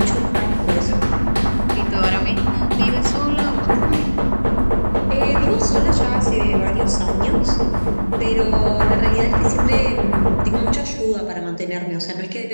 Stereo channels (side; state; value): both; inverted; correlation -1.00